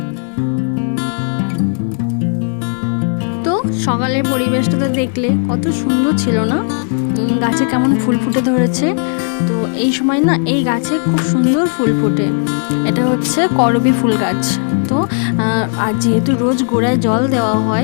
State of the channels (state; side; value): silent; right; 55 dB below the other